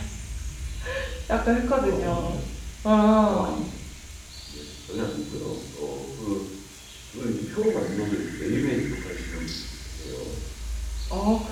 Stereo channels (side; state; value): both; identical; correlation 1.00